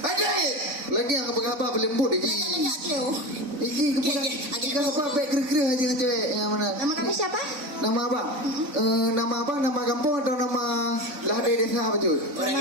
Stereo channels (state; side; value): late; left; 4.0 ms